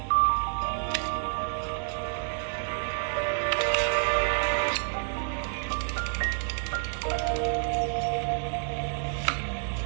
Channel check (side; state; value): left; silent; 59 dB below the other